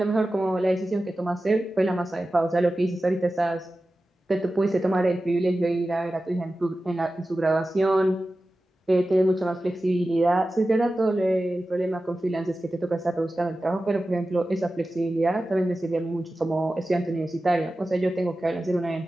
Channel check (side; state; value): both; normal; correlation 0.94